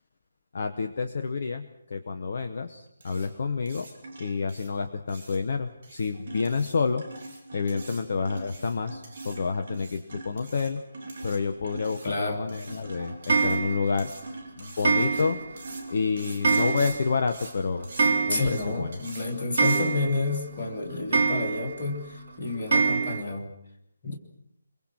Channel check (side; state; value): both; inverted; correlation -0.80